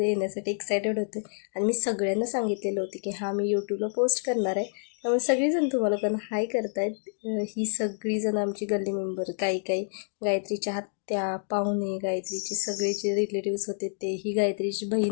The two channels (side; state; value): right; silent; digital silence